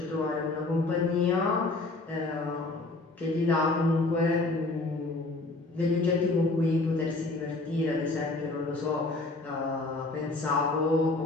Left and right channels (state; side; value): quieter; right; 3.2 dB